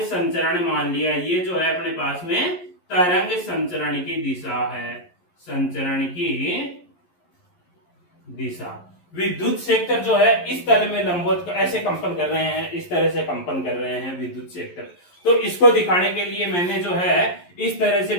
संचरण मान लिया, ये जो है अपने पास में तरंग संचरण की दिशा है, संचरण की दिशा। विद्युत क्षेत्र जो है इस तल में लंबवत ऐसे कंपन कर रहे हैं, इस तरह से कंपन कर रहे हैं विद्युत क्षेत्र। तो इसको दिखाने के लिए मैंने जो है इस तरह से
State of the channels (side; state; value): right; late; 11 ms